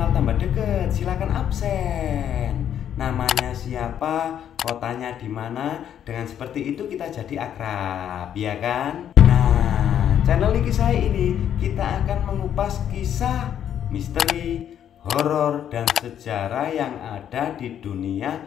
tambah deket, silakan absen. Namanya siapa, kotanya di mana. Dengan seperti itu kita jadi akrab, ya kan? Nah, channel Niki Sai ini kita akan mengupas kisah misteri, horor, dan sejarah yang ada di dunia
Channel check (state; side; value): quieter; right; 9.7 dB